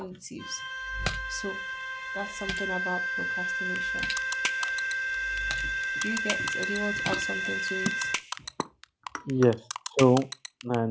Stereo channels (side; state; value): both; identical; correlation 1.00